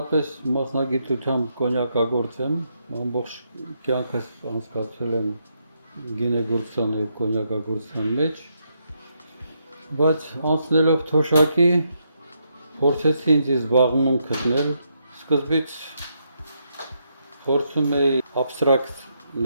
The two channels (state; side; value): inverted; both; correlation -0.79